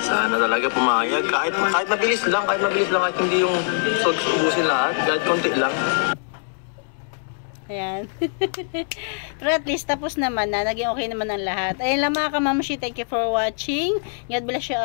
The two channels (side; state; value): right; silent; 64 dB below the other